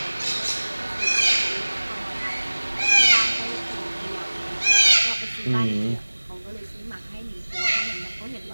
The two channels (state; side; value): inverted; both; correlation -1.00